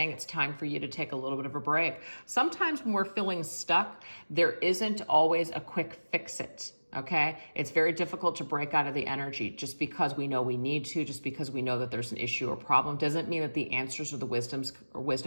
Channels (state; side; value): inverted; both; correlation -1.00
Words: it's time for you to take a little bit of a break. Sometimes when we're feeling stuck, there isn't always a quick fix it. Okay, it's very difficult to break out of the energy. Just because we know we need to, just because we know that there's an issue or problem, doesn't mean that the answers or the